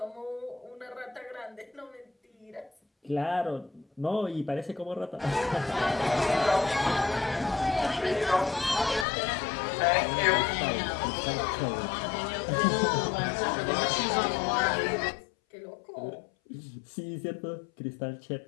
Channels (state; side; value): drops out; right; at 9.1 s